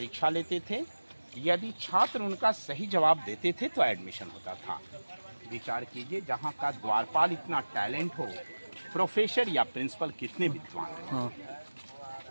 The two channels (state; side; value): inverted; both; correlation -1.00